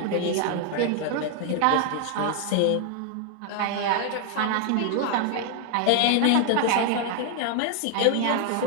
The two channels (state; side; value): different; both; correlation 0.00